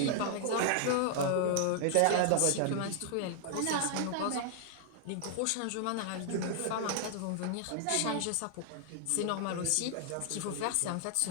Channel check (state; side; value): different; both; correlation 0.00